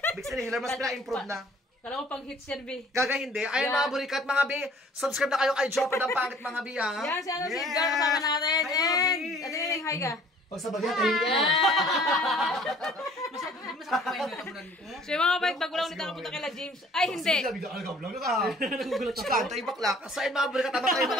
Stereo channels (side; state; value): both; normal; correlation 0.54